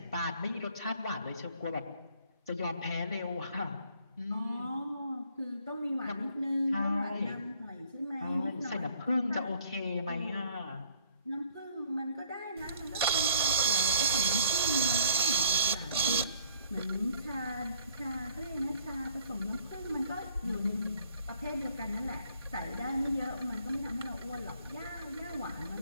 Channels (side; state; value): both; inverted; correlation -0.59